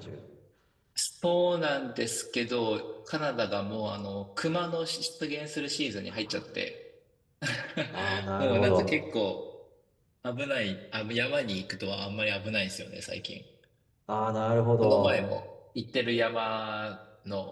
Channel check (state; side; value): identical; both; correlation 1.00